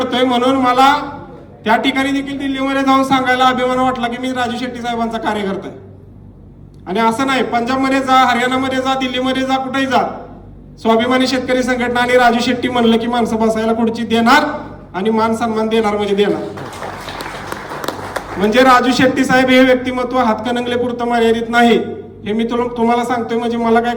म्हणून मला त्या ठिकाणी देखील दिल्लीमध्ये जाऊन सांगायला अभिमान वाटला की मी राजू शेट्टी साहेबांचा कार्यकर्ता आहे. आणि असं नाही, पंजाबमध्ये जा, हरियाणामध्ये जा, दिल्लीमध्ये जा, कुठेही जा, स्वाभिमानी शेतकरी संघटना आणि राजू शेट्टी म्हणलं की माणसं बसायला खुर्ची देणार आणि मान सन्मान देणार म्हणजे देणार. म्हणजे राजू शेट्टी साहेब हे व्यक्तिमत्व हातकणंगले पुरतं मर्यादित नाही, हे मी तुम्हाला सांगतोय. म्हणजे मला काय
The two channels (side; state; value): both; identical; correlation 1.00